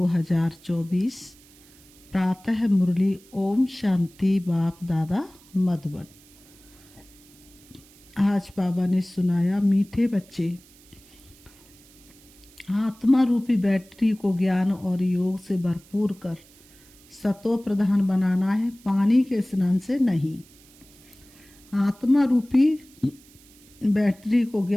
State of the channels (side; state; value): right; noise; hiss, 26 dB below the sound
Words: प्रातः मुरली। ओम शांति। बाप दादा मधुबन। आज बाबा ने सुनाया, मीठे बच्चे, आत्मा रूपी बैटरी को ज्ञान और योग से भरपूर कर सतो प्रधान बनाना है, पानी के स्नान से नहीं। आत्मा रूपी बैटरी को